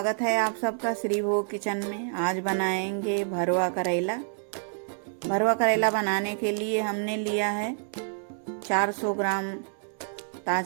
है आप सबका श्री भोग किचन में। आज बनाएंगे भरवा करेला। भरवा करेला बनाने के लिए हमने लिया है 400 ग्राम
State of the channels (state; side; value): silent; left; digital silence